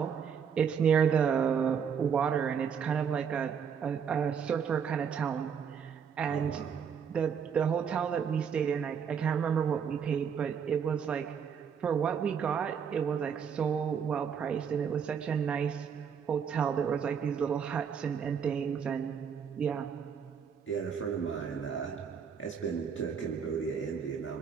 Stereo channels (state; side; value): quieter; left; 7.1 dB